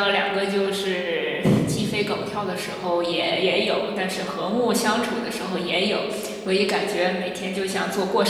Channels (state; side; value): identical; both; correlation 1.00